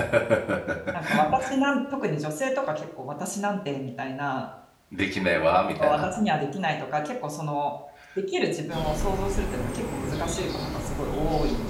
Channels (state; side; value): identical; both; correlation 1.00